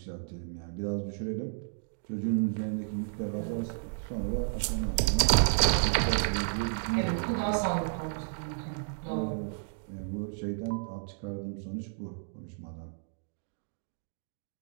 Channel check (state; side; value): silent; left; digital silence